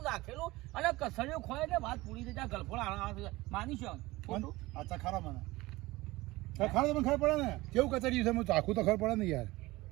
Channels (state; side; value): quieter; left; 20.0 dB